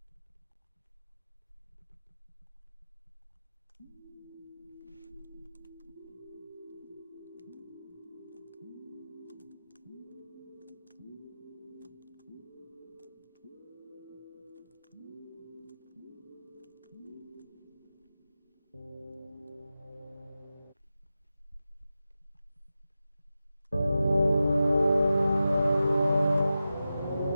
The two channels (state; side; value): inverted; both; correlation -0.94